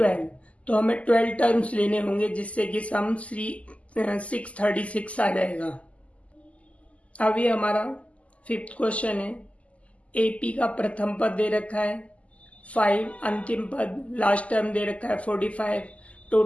तो हमें 12 टर्म्स लेने होंगे, जिससे कि सम 636 आ जाएगा। अब ये हमारा 5th क्वेश्चन है। AP का प्रथम पद दे रखा है 5, अंतिम पद लास्ट टर्म दे रखा है 45,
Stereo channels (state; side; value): late; right; 0.067 ms